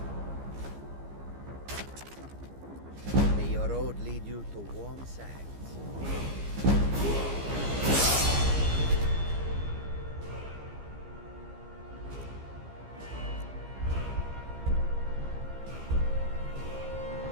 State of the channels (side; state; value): left; late; 15 ms